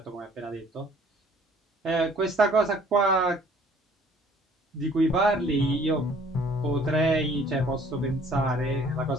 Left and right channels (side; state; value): both; normal; correlation 0.56